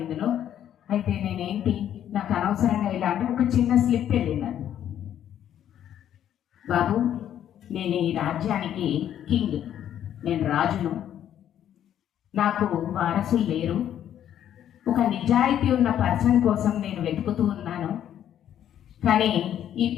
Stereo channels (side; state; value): right; quieter; 10.5 dB